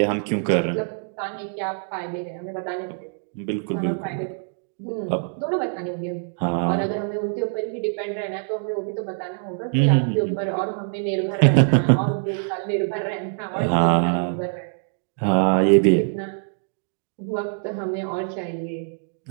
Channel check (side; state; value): left; silent; digital silence